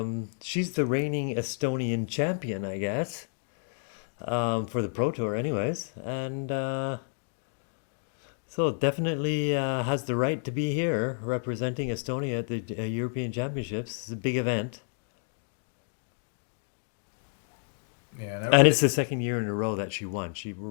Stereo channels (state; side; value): silent; right; digital silence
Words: she's the reigning Estonian champion, I guess, for the Pro Tour anyways. And so definitely has the right to be here representing Estonia at the European Championships. It's a big event. Yeah, And it's the second year in a row that she won. She